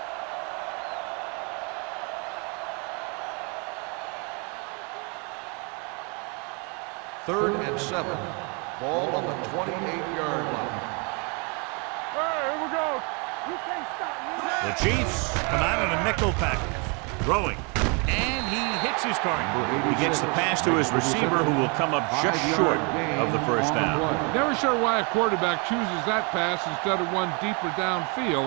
Third and 7. Ball on the 28-yard line. Hey, here we go. You can't stop me. The Chiefs come out in a nickel package, throwing, and he hits his target. He gets the pass to his receiver, who will come up just short of the first down. Never sure why a quarterback chooses that pass instead of one deeper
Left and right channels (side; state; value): left; quieter; 33.3 dB